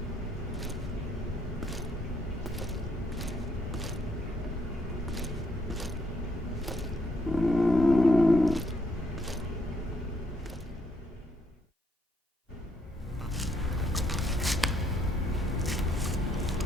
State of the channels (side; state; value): both; normal; correlation 0.73